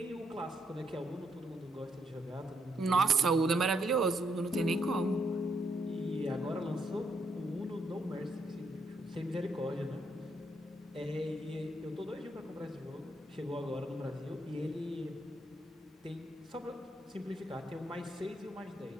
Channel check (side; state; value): both; normal; correlation 0.75